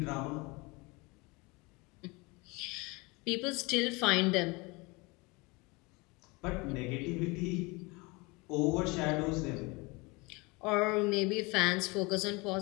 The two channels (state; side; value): quieter; right; 26.0 dB